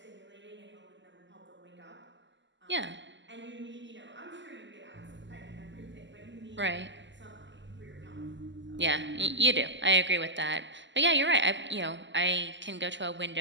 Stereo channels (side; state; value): left; late; 0.54 ms